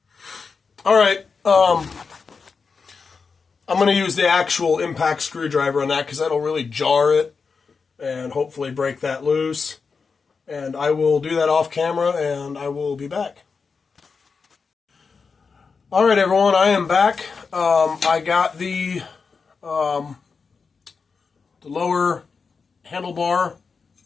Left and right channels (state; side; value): quieter; right; 5.1 dB